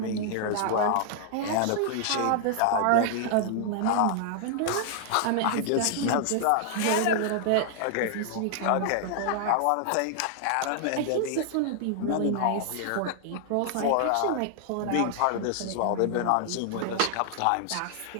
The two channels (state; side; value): different; both; correlation 0.00